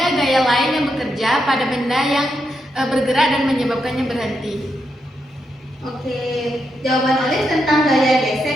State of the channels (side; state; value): both; normal; correlation 0.82